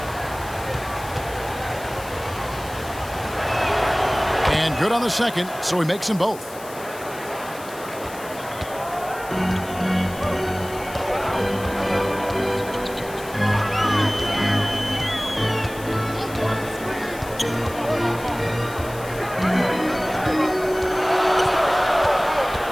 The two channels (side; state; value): left; noise; hiss, 17 dB below the sound